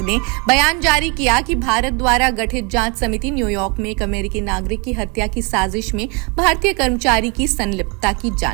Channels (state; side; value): quieter; left; 31.3 dB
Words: ने बयान जारी किया कि भारत द्वारा गठित जांच समिति न्यूयॉर्क में एक अमेरिकी नागरिक की हत्या की साजिश में भारतीय कर्मचारी की संलिप्तता की